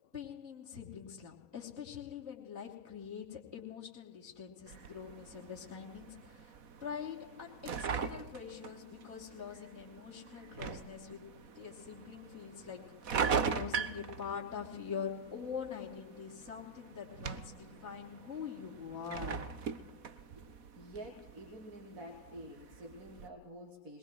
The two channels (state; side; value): late; left; 4.1 ms